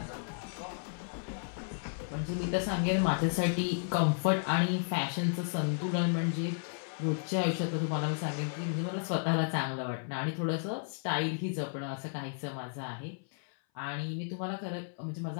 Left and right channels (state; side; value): silent; right; 56 dB below the other